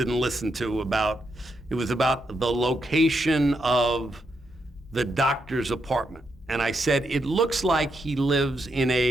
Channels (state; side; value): normal; both; correlation 0.81